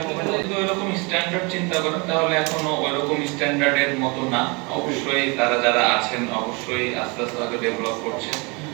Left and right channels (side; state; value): left; quieter; 29.5 dB